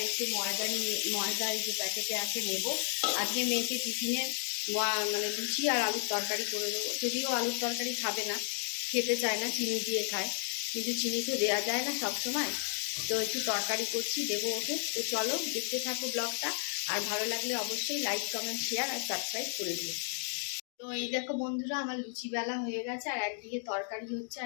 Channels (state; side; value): silent; right; 56 dB below the other